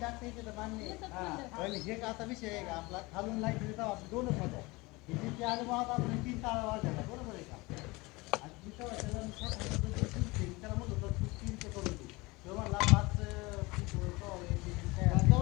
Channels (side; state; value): right; quieter; 23.4 dB